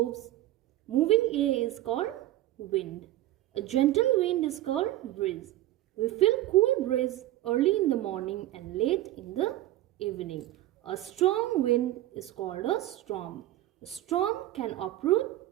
Moving air is called wind. A gentle wind is called breeze. We feel cool breeze early in the morning and late in the evening. A strong wind is called a storm. A storm can uproot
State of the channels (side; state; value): left; quieter; 15.1 dB